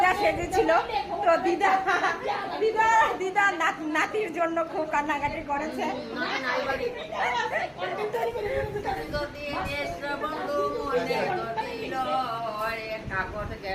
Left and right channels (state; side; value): identical; both; correlation 1.00